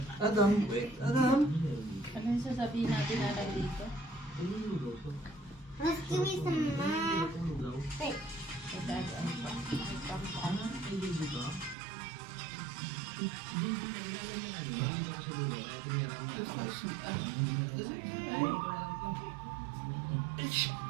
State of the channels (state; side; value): drops out; left; at 11.8 s